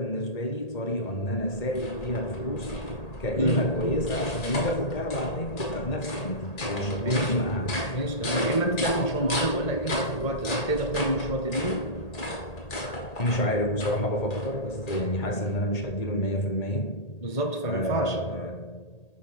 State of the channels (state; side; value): late; right; 1.8 ms